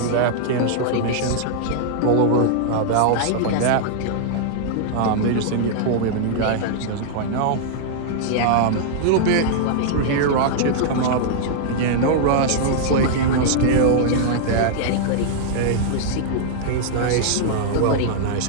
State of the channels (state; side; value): different; both; correlation -0.01